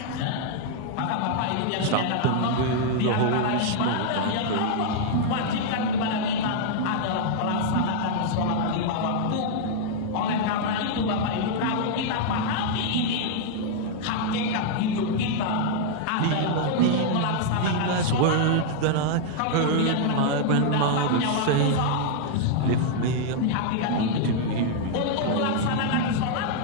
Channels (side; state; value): both; different; correlation -0.01